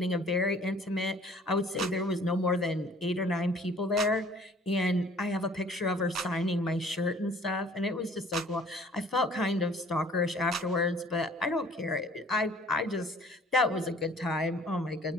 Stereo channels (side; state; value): both; normal; correlation 0.53